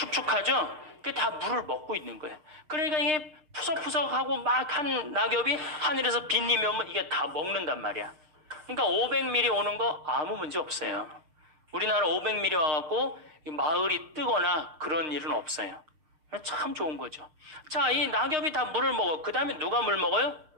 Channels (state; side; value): late; left; 6.5 ms